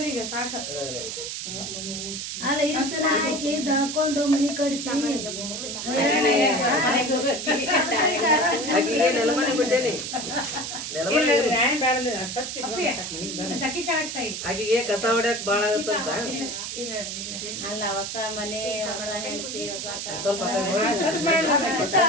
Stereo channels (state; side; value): noise; right; hiss, 5 dB below the sound